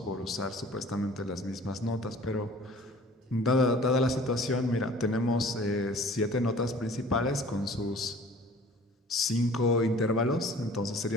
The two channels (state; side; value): normal; both; correlation 0.49